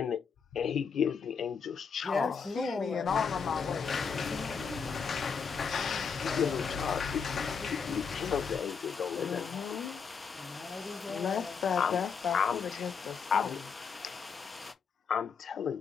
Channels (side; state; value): right; quieter; 6.1 dB